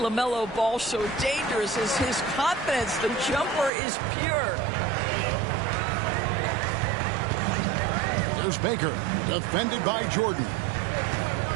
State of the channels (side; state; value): left; drops out; at 3.7 s